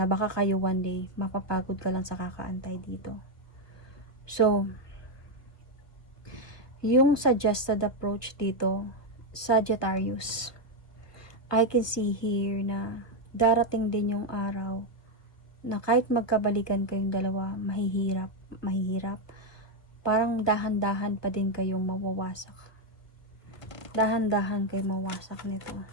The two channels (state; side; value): late; right; 1.3 ms